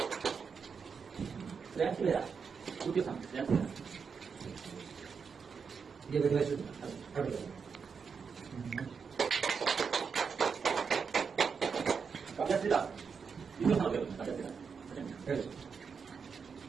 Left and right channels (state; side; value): quieter; left; 5.9 dB